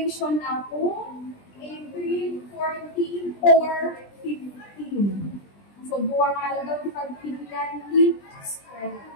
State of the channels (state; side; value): late; right; 20 ms